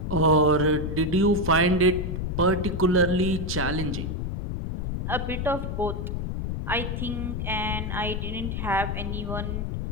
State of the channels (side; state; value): left; noise; rumble, 3 dB below the sound